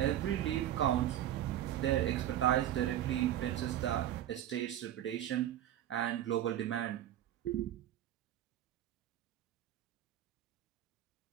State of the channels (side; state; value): left; quieter; 11.8 dB